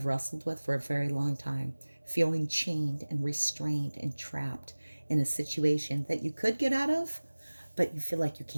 wrestled with for a very long time, feeling chained and restrained and trapped in a situation that you could get out of, but you feel like you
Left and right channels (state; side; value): inverted; both; correlation -1.00